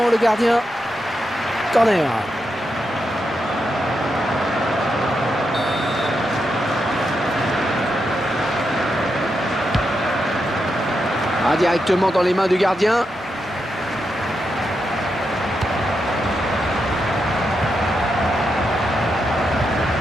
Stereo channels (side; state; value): both; normal; correlation 0.85